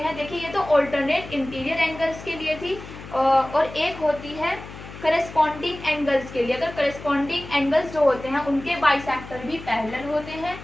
देखिए ये तो ऑल्टरनेट इंटीरियर एंगल्स के लिए थी, और एक होती है करेस्पॉन्डिंग एंगल्स के लिए। अगर करेस्पॉन्डिंग एंगल्स जो होते हैं उनके बाइसेक्टर भी पैरेलल होते हैं,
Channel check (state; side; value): noise; left; hum, 14 dB below the sound